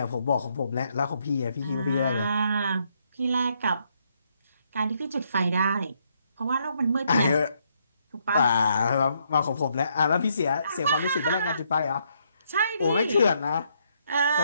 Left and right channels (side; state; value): both; inverted; correlation -0.74